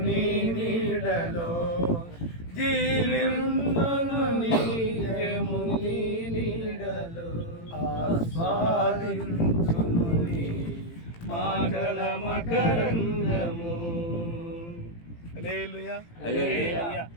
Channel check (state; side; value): late; right; 18 ms